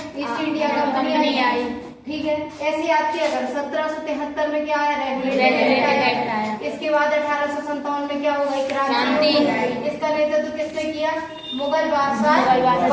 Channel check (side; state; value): both; identical; correlation 1.00